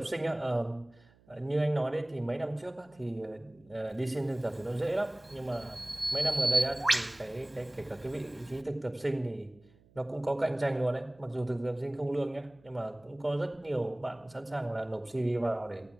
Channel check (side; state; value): right; noise; hum, 29 dB below the sound